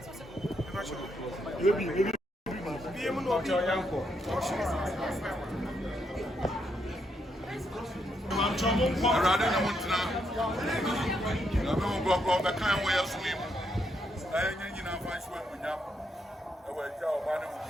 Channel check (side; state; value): both; normal; correlation 0.78